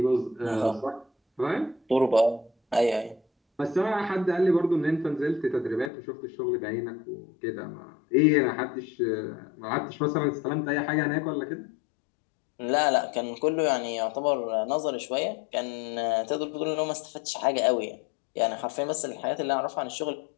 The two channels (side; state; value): right; drops out; at 5.9 s